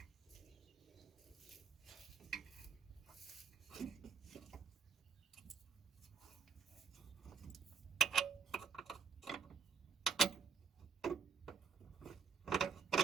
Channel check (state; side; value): quieter; left; 5.8 dB